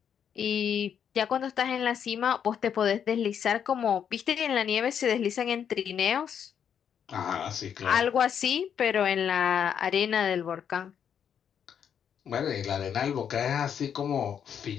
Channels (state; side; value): quieter; right; 8.2 dB